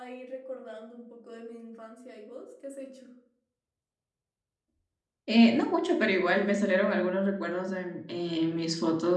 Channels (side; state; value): both; identical; correlation 1.00